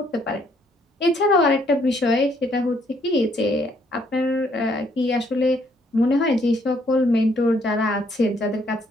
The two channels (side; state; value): both; normal; correlation 0.68